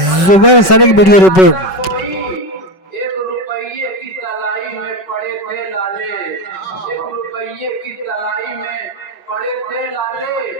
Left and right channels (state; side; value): late; right; 5.3 ms